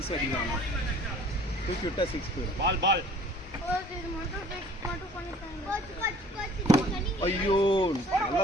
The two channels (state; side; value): normal; both; correlation 0.51